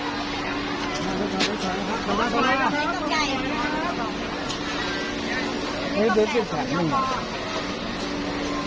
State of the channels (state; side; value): identical; both; correlation 1.00